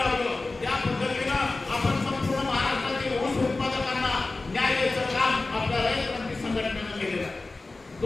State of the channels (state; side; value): quieter; right; 3.4 dB